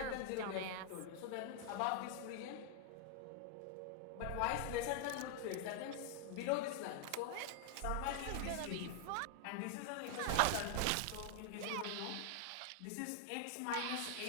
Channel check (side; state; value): both; different; correlation 0.00